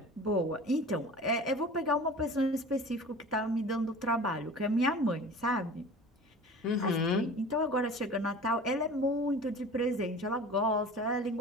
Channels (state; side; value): normal; both; correlation 0.39